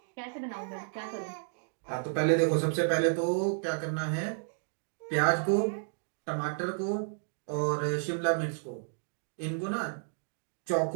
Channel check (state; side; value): silent; left; digital silence